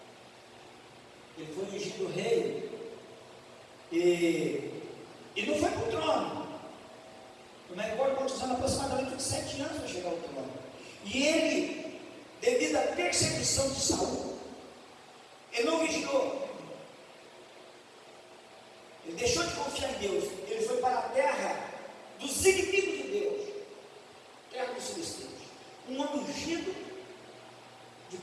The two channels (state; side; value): identical; both; correlation 1.00